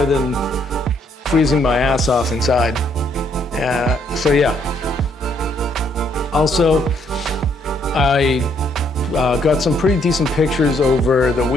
than freezing my ass off inside. So yeah. Also, I got some pretty decent pictures over the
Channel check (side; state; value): both; normal; correlation 0.69